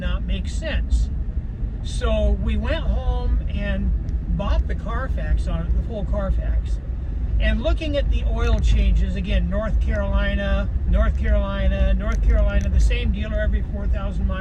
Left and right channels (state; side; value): identical; both; correlation 1.00